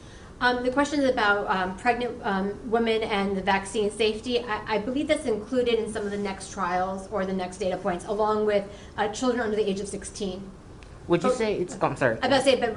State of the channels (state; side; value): identical; both; correlation 1.00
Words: The question is about pregnant women and the vaccine safety. I believe that's included in some of the next trials or the next data points, along with children under the age of 16. Would you say it's, I'm sorry. I was about to say, but